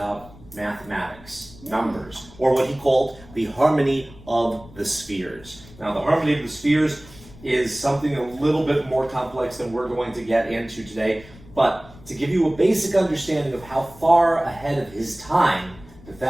mathematics, numbers, or what he called the harmony of the spheres. Now, the harmony of the spheres is something a little bit more complex than we're going to get into today, but to give you a basic understanding of how far ahead of his time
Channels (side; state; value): left; noise; rumble, 21 dB below the sound